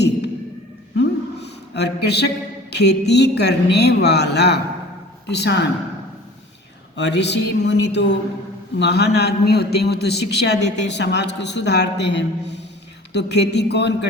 और कृषक खेती करने वाला किसान, और ऋषि मुनि तो महान आदमी होते हैं, वो तो शिक्षा देते हैं, समाज को सुधारते हैं। तो खेती कौन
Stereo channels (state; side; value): normal; both; correlation 0.44